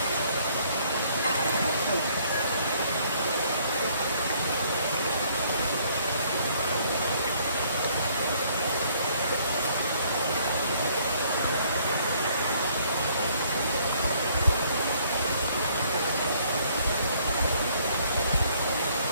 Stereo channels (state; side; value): inverted; both; correlation -0.63